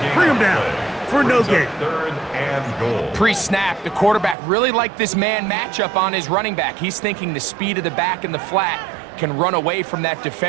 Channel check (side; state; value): left; drops out; at 4.4 s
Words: Bring him down for no gain. 3rd and goal. Pre-snap, the quarterback really liked this man matchup on his running back. He's thinking the speed of the back in the flat can run away from that